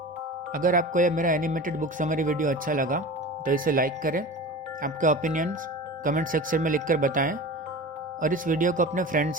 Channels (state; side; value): normal; both; correlation 0.33